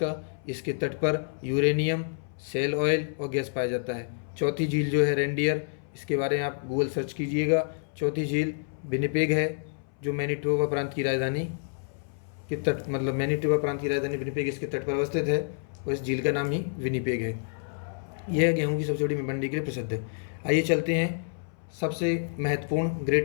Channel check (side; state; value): right; silent; 59 dB below the other